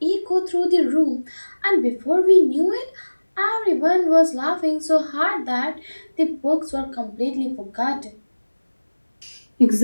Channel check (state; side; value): inverted; both; correlation -1.00